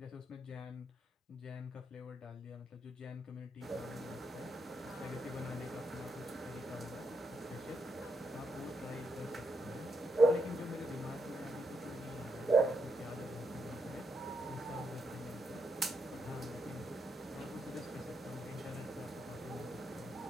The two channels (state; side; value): normal; both; correlation 0.80